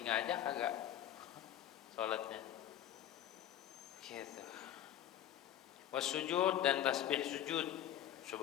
aja kagak sholatnya. Gitu. Wasujud dan tasbih sujud.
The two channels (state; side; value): quieter; right; 11.4 dB